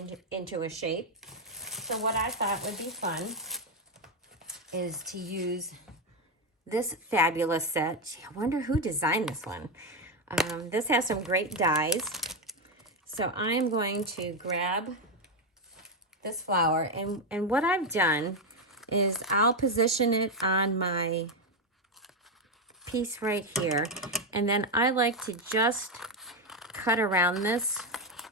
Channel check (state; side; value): normal; both; correlation 0.07